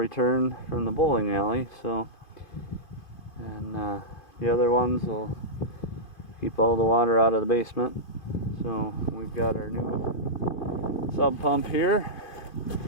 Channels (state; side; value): late; right; 2.5 ms